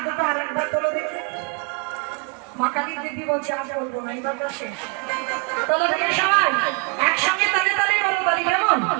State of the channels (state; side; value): quieter; left; 30.9 dB